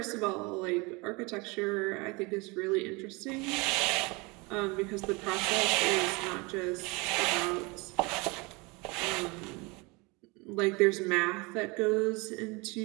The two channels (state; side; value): quieter; left; 26.9 dB